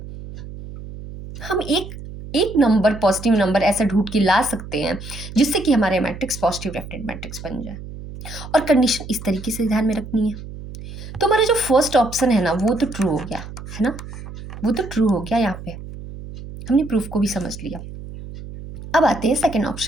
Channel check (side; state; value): right; noise; hum, 12 dB below the sound